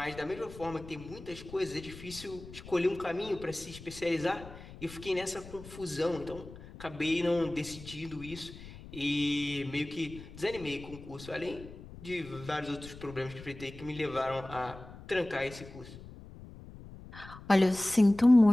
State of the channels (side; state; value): left; noise; rumble, 16 dB below the sound